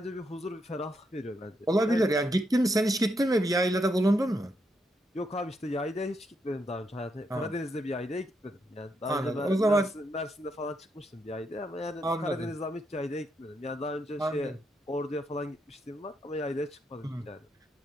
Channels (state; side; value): normal; both; correlation 0.80